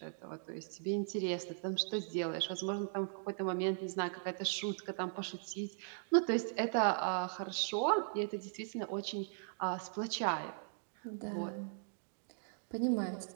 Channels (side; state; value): left; silent; digital silence